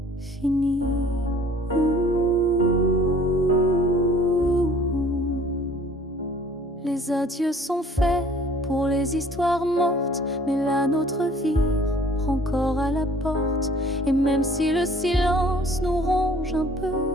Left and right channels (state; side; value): normal; both; correlation 0.54